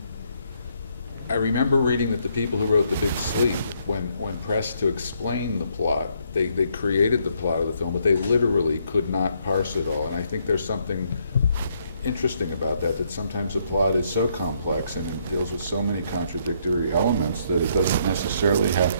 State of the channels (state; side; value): inverted; both; correlation -0.72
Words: I remember reading that the people who wrote The Big Sleep, when pressed to explain the plot, they created the plot of the film, but they literally could not parse it all. And I think there's something interesting about that sometimes a plot is so complex and it deals with so many contradictory elements that it doesn't necessarily have